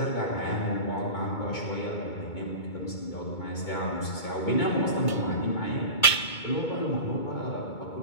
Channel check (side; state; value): right; late; 2.2 ms